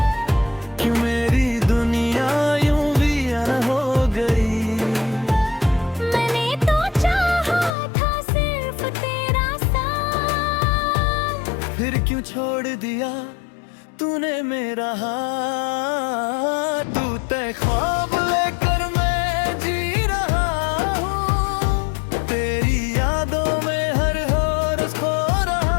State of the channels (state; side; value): drops out; right; at 7.7 s